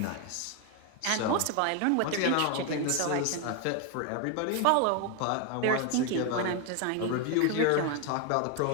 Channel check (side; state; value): both; different; correlation 0.01